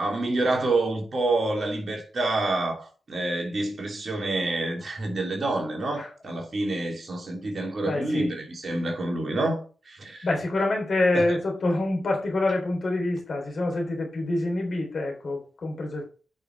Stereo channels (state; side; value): normal; both; correlation 0.88